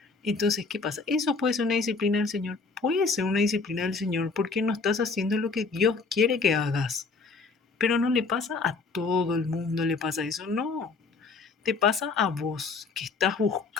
Entonces, ¿qué pasa? Eso puede ser una disciplina del Señor. Puede ser una disciplina del Señor porque no estás haciendo lo que Dios quiere que hagas. Pero no le pasa a todo el mundo, le pasa eso. No, te pasa a vos que estás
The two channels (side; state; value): right; quieter; 4.3 dB